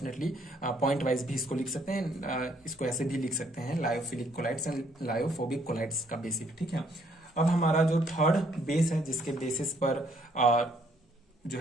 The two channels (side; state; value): both; normal; correlation 0.67